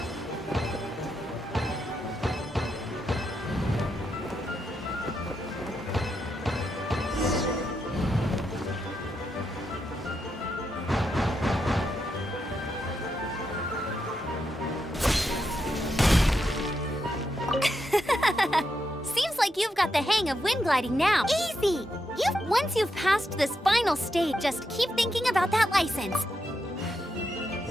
Seems like you've got the hang of wind gliding now. Easy! Once you've passed this final stage, just keep thinking about that license.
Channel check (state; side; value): normal; both; correlation 0.83